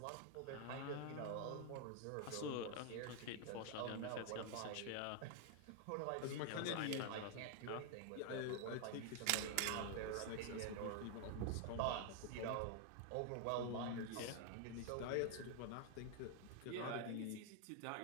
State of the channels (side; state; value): both; different; correlation 0.00